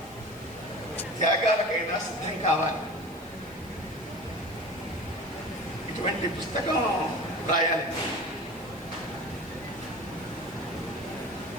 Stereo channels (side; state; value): right; noise; hiss, 23 dB below the sound